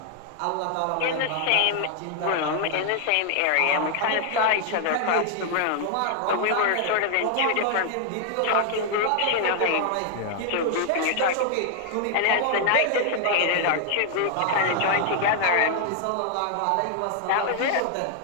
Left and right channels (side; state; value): both; different; correlation 0.00